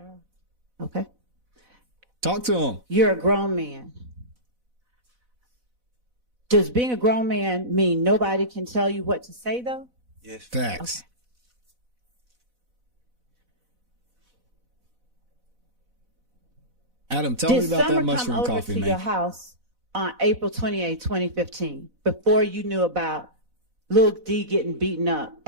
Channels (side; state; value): left; late; 4.0 ms